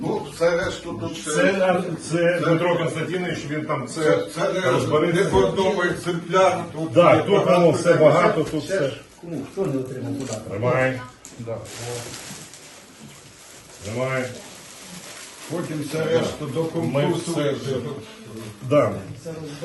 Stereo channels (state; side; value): identical; both; correlation 1.00